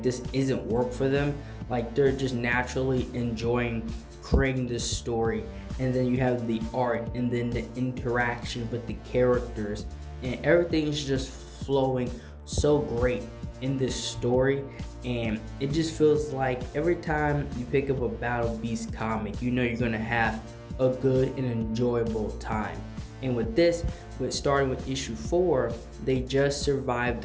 this isn't work for them, like they're just naturally enjoying creating this story. And then you have the art and then the interaction with the characters, and everything is just flowing so great in this story. And it just feels like every time you pick up a Battle Beast comic, you know you're gonna have a good and enjoyable time. And with this, starting with issue 4, they just survived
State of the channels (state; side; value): identical; both; correlation 1.00